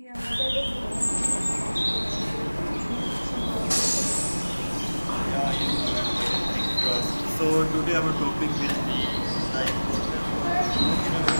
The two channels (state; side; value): inverted; both; correlation -1.00